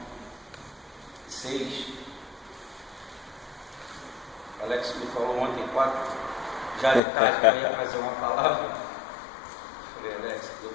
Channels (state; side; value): drops out; right; at 7.0 s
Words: 6. Alex me falou ontem, 4, já de tarde, que eu ia fazer uma palavra. Falei, Alex, não deu